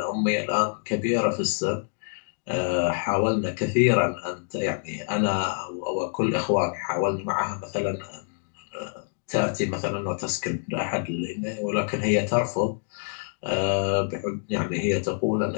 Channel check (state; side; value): silent; right; digital silence